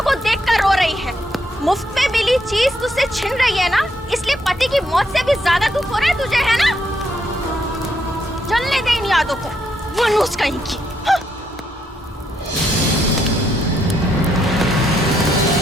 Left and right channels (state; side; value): normal; both; correlation 0.76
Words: को देखकर रो रही है। मुफ्त में मिली चीज तुझसे छिन रही है ना, इसलिए पति की मौत से भी ज्यादा दुख हो रहा है तुझे, है ना? जलने दे इन यादों को, मनुष कहीं की।